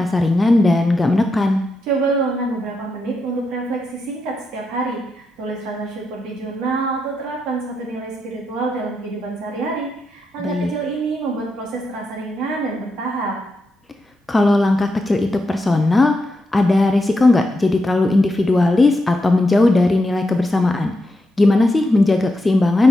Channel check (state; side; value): normal; both; correlation 0.85